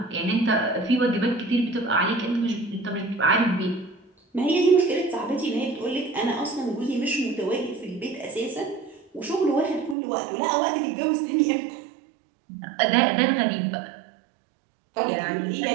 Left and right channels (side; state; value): left; drops out; at 10.0 s